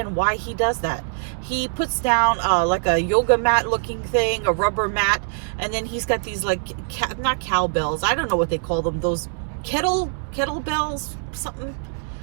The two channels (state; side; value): silent; left; digital silence